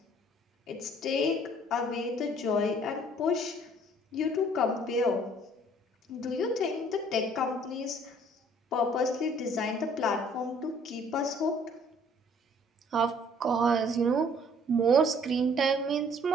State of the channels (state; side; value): normal; both; correlation 0.57